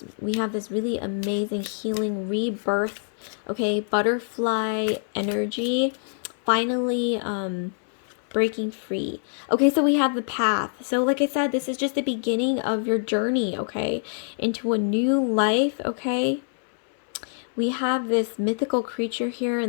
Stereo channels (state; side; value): silent; right; 62 dB below the other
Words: We have this really amazing healing rebirth, okay, butterfly energy, finally breaking free. Okay, so we have the path. So like I said, this is just the beginning of your journey, okay, into a new life, okay? We have this mythical creature here